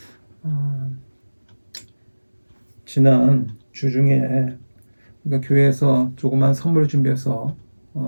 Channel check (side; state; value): both; inverted; correlation -1.00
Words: 지난 주 중에 그러니까 교회에서 조그만 선물을 준비해서